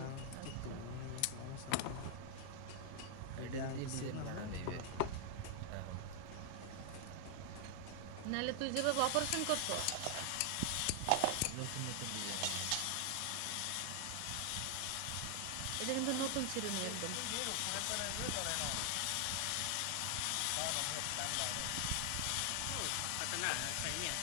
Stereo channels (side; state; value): both; different; correlation 0.00